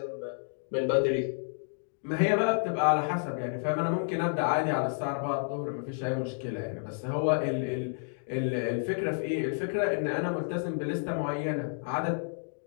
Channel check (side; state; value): right; silent; digital silence